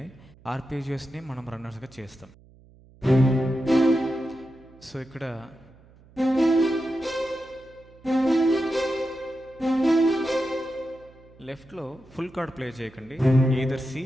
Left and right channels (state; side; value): noise; right; hum, 26 dB below the sound